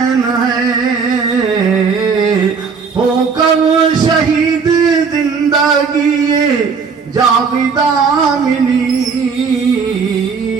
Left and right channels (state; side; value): quieter; left; 5.6 dB